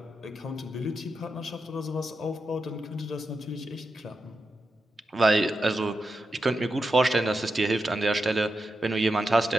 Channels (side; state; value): both; normal; correlation 0.88